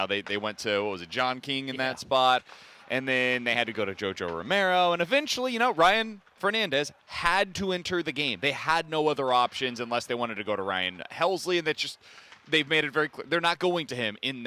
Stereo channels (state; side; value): identical; both; correlation 1.00